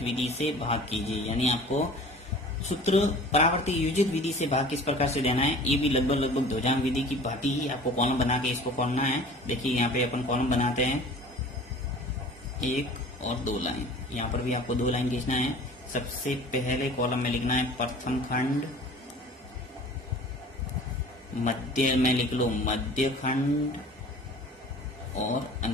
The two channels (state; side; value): normal; both; correlation 0.44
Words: विधि से भाग कीजिए। यानी आपको सूत्र परावर्ती योजित विधि से भाग किस प्रकार से देना है, ये भी लगभग ध्वजांक विधि की भांति ही आपको कॉलम बना के इसको करना है। देखिए यहाँ पे अपन कॉलम बनाते हैं 1 और 2 लाइन, यहाँ पर भी आपको 2 लाइन खींचना है। सबसे पहले कॉलम में लिखना है प्रथम खंड, मध्य में लिख लो मध्य खंड और